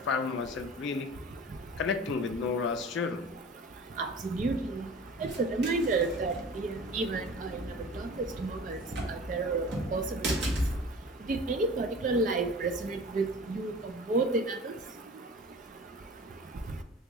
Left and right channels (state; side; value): normal; both; correlation 0.40